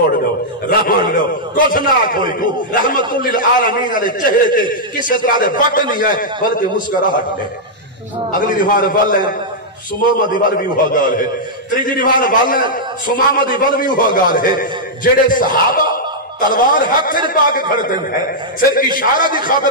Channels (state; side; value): normal; both; correlation -0.07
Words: دو رحمان دو کچھ نہ کوئی کو رحمت للعالمین علیہ چہرے کے کسی طرح دے بٹ نہیں ہے بلکہ مسکراہٹ ہے. اگلی دیوار بل ہے سماما دیوار بھی ہوا گال ہے. تریجی دیوار بل ہے سماما دیوار بھی ہوا گال ہے. جڑے صحابہ تلوار ہاتھ سے پا کے کھڑتے ہیں صرف اشارہ دی